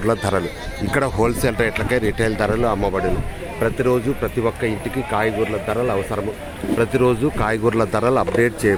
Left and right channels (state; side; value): identical; both; correlation 1.00